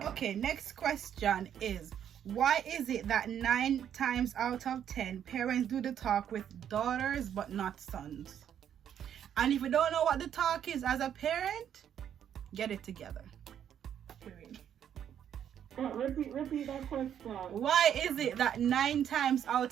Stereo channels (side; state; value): left; quieter; 9.4 dB